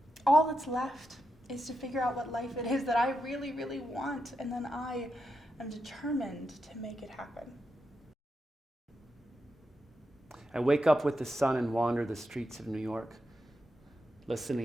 all that's left is to figure out what life it is that I really, really want, and then I am determined to make it happen. I wake up with the sun and wander the streets of New York,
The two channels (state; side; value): normal; both; correlation 0.86